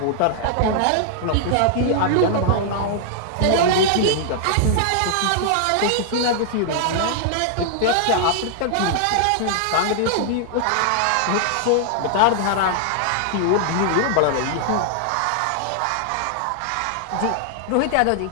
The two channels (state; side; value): different; both; correlation -0.01